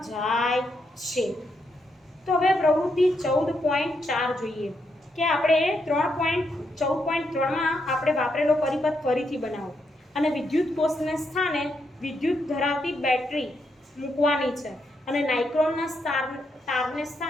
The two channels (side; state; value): both; normal; correlation 0.80